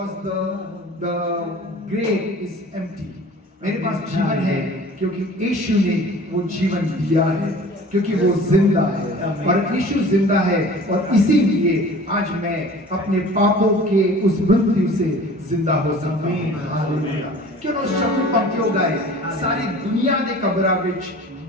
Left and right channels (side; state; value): both; normal; correlation 0.44